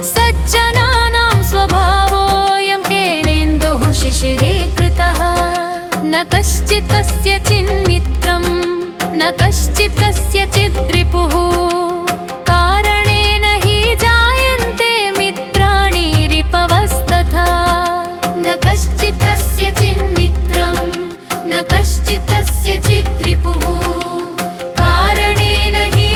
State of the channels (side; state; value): both; identical; correlation 1.00